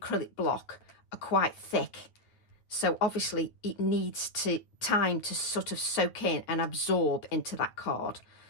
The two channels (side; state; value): right; late; 9.2 ms